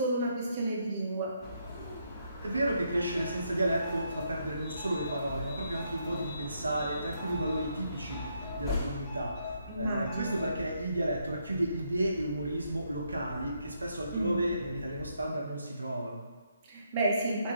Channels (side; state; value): both; inverted; correlation -0.76